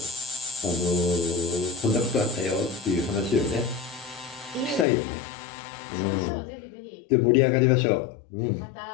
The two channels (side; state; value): right; drops out; at 4.9 s